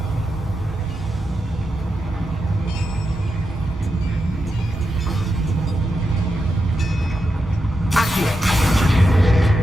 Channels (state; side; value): normal; both; correlation 0.87